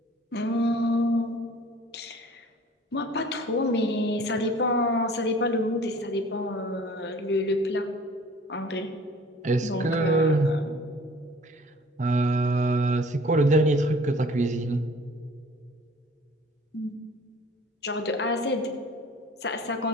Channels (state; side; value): normal; both; correlation 0.50